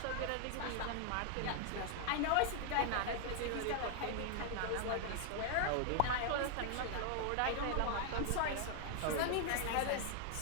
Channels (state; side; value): different; both; correlation 0.00